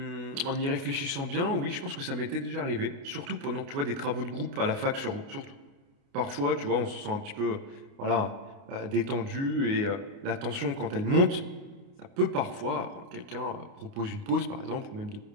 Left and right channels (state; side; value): late; left; 29 ms